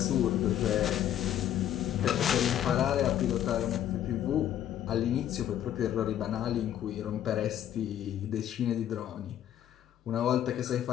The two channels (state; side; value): quieter; right; 11.0 dB